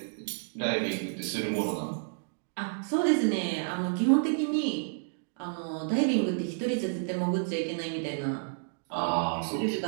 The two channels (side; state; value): left; silent; digital silence